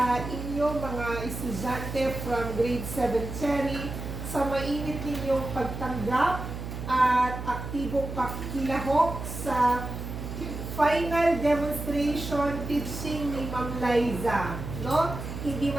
inyo mga estudyante from grade 7 Cherry sa mainit ninyong pagtanggap at aktibong pakikilahok sa final demonstration teaching ni Ma'am Liza, no? Hindi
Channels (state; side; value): noise; right; hum, 7 dB below the sound